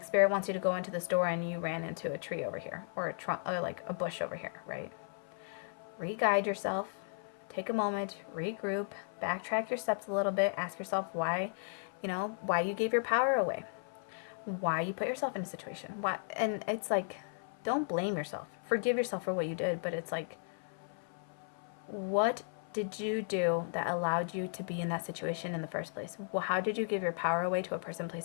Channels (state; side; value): silent; right; 54 dB below the other